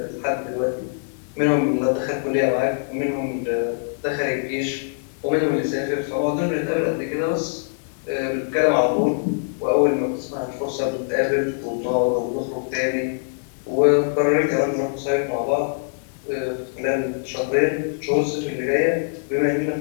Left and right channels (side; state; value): right; silent; 63 dB below the other